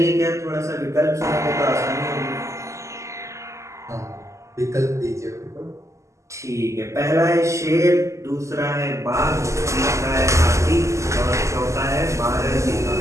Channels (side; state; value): left; late; 0.14 ms